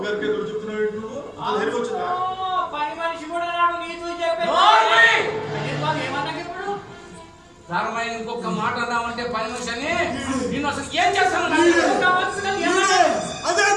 గారికి ఎదురు చెప్తున్నావు. పని మనిషి కూడా నాడు నీతో చెప్పే ధర్మైన ఇంకొక మాట అన్నామంటే పని మనిషి అని నేను అసలు ఏం చేస్తాను? అదే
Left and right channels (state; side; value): identical; both; correlation 1.00